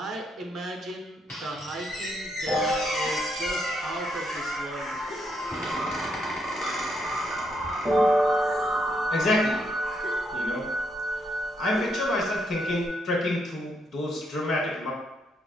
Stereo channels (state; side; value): normal; both; correlation 0.76